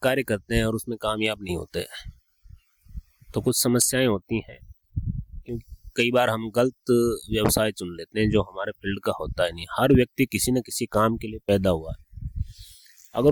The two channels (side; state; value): both; identical; correlation 1.00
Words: कार्य करते हैं और उसमें कामयाब नहीं होते, तो कुछ समस्याएं होती हैं। क्योंकि कई बार हम गलत व्यवसाय चुन लेते हैं जो हमारे फील्ड का होता है नहीं। हर व्यक्ति किसी न किसी काम के लिए पैदा हुआ है। अगर